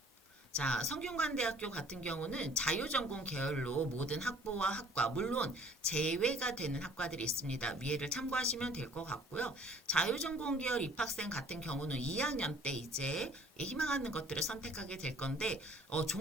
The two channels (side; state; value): both; normal; correlation 0.55